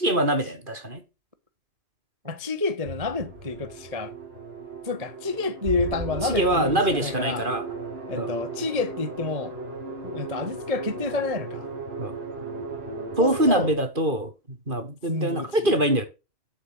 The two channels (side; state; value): left; late; 2.5 ms